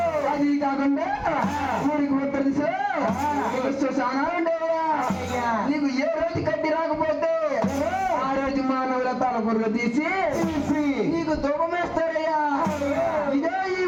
అది కాకుండా ఊరికి ఉత్తర దిశలో శ్మశానాలు ఉండేవయ్యా. నీకు ఏ రోజు కట్టి రాకపోతే ఆ రోజు మానవుల తలపుర్లు తీసి నీకు ధూపం వేస్తారయ్యా. ఇదే ఈ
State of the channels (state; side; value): identical; both; correlation 1.00